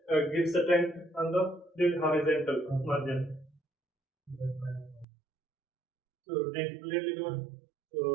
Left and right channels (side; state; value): left; drops out; at 5.1 s